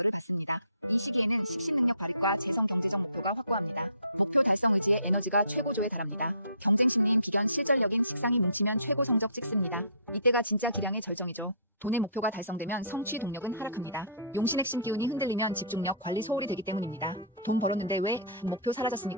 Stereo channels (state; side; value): inverted; both; correlation -0.48